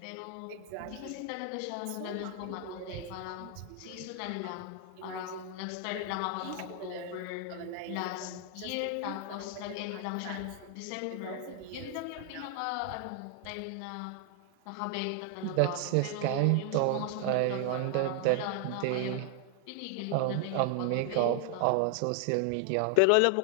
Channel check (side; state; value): both; different; correlation 0.00